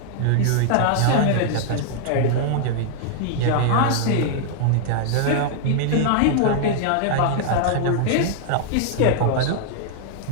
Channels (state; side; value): different; both; correlation 0.00